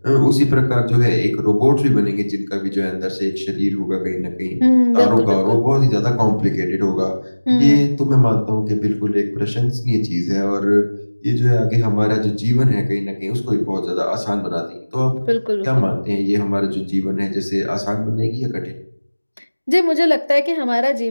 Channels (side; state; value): both; inverted; correlation -1.00